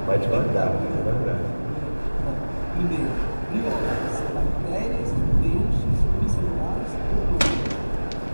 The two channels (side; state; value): both; inverted; correlation -1.00